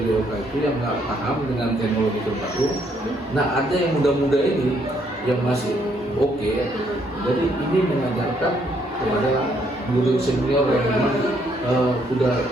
itu yang nggak paham dengan teknologi terbaru. Nah, ada yang muda-muda ini yang masih oke. Jadi ini mengajarkan kepada guru senior yang memang sudah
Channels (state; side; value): normal; both; correlation 0.70